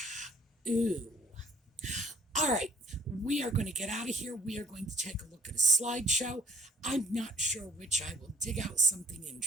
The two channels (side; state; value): both; normal; correlation 0.58